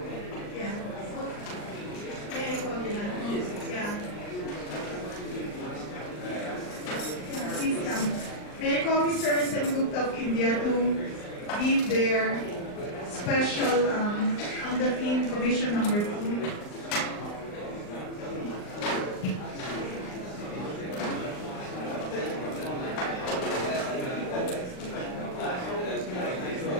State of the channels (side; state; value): right; late; 39 ms